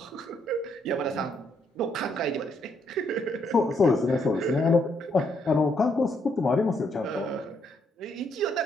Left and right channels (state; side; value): normal; both; correlation 0.74